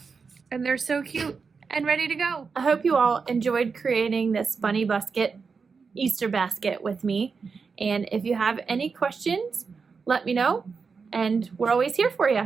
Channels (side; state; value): left; quieter; 5.2 dB